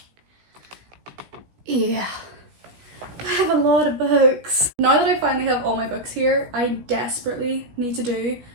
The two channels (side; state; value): left; late; 16 ms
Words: Yeah. I have a lot of books. Now that I finally have all my books here, I desperately need to do